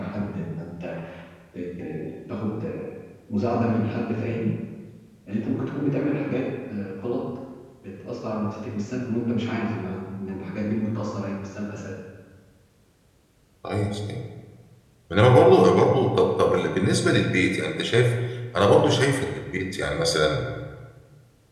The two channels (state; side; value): identical; both; correlation 1.00